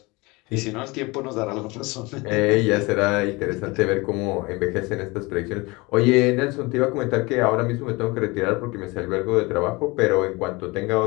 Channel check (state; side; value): quieter; right; 24.5 dB